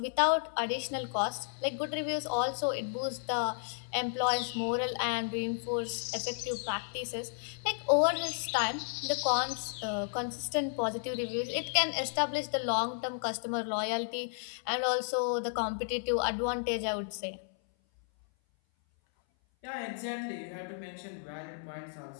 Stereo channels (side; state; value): right; silent; 56 dB below the other